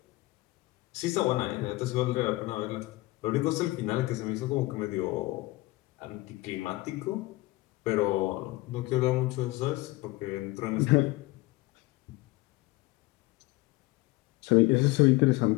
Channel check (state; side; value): quieter; right; 20.9 dB